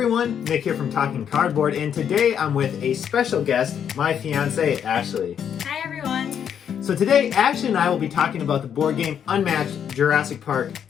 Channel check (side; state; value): right; quieter; 8.5 dB